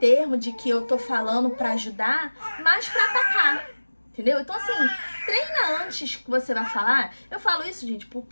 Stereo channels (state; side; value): inverted; both; correlation -1.00